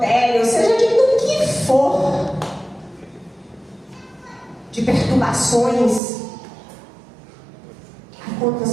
seja de do que for, de perturbações. Aí quando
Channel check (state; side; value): drops out; left; at 6.0 s